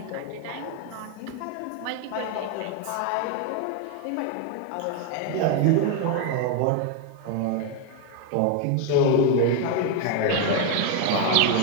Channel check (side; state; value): both; different; correlation 0.01